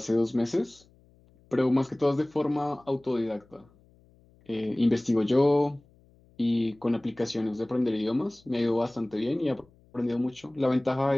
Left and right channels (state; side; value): noise; left; hum, 30 dB below the sound